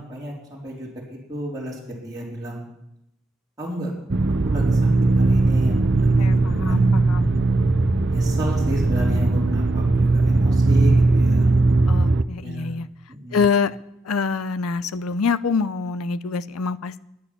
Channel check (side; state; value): both; normal; correlation 0.83